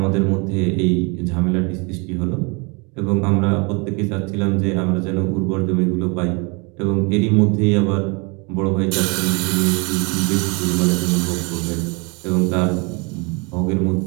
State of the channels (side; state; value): left; quieter; 30.8 dB